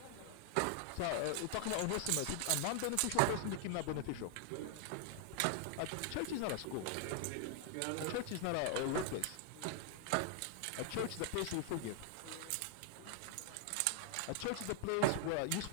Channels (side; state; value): both; different; correlation 0.00